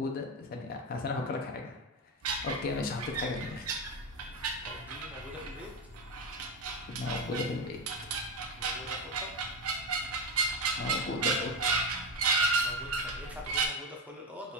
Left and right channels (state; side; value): normal; both; correlation 0.13